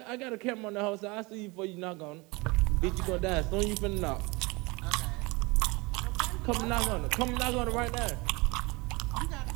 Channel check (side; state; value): left; quieter; 25.3 dB